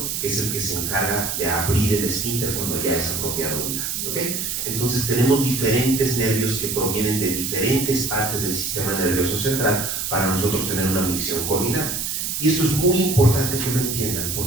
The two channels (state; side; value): noise; right; hiss, 2 dB below the sound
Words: que es el que se encarga de abrir el esfínter cuando ya es apropiado orinar, ¿okay? Entonces tenemos diferentes nervios que provienen de diferentes partes del sistema nervioso central para nosotros tener una micción coordinada. Y esto es muy importante que lo entiendan,